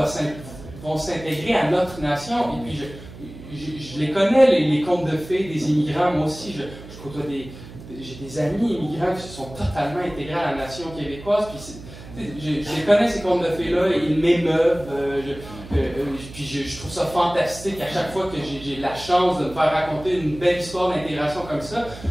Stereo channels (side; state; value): right; noise; hum, 15 dB below the sound